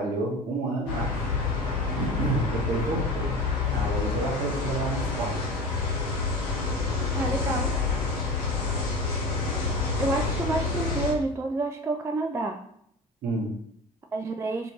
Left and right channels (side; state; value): both; normal; correlation 0.33